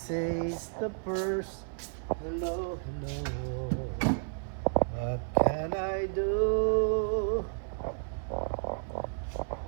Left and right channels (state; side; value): silent; left; 56 dB below the other